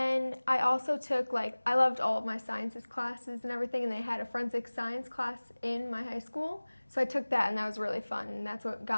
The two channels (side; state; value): both; inverted; correlation -1.00